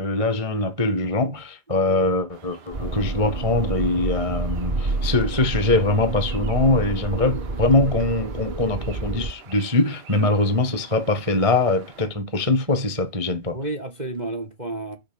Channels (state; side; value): late; left; 2.2 ms